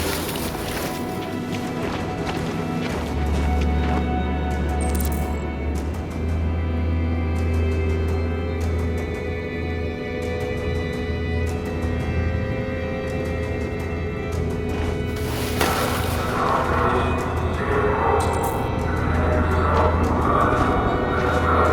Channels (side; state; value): both; identical; correlation 1.00